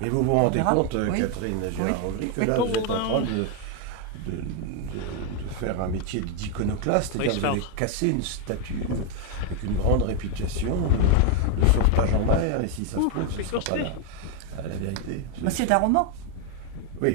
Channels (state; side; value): different; both; correlation 0.01